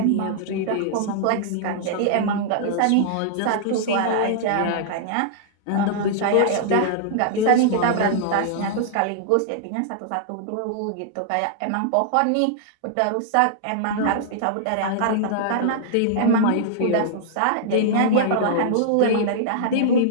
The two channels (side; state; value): both; different; correlation -0.01